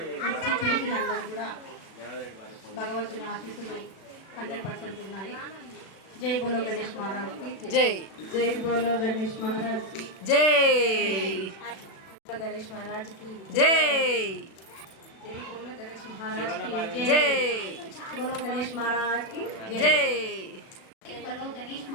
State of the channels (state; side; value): late; right; 36 ms